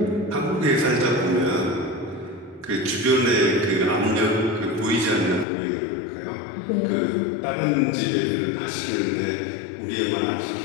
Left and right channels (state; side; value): drops out; right; at 5.5 s